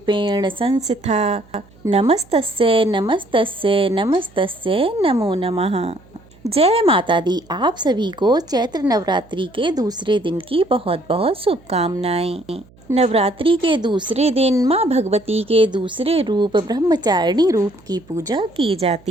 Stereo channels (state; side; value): noise; right; hum, 27 dB below the sound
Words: संस्थिता नमस्तस्यै नमस्तस्यै नमस्तस्यै नमो नमः। जय माता दी। आप सभी को चैत्र नवरात्रि के दूसरे दिन की बहुत बहुत शुभकामनाएं। नवरात्रि के दूसरे दिन माँ भगवती के दूसरे रूप ब्रह्मचारिणी रूप की पूजा की